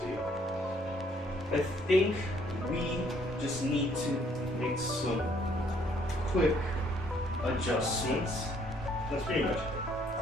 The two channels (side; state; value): both; normal; correlation 0.65